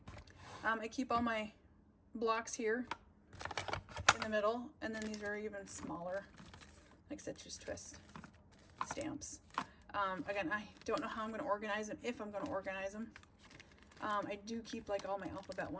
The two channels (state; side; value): identical; both; correlation 1.00